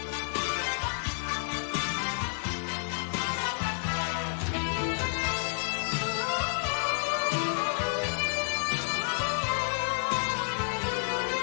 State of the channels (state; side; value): silent; right; digital silence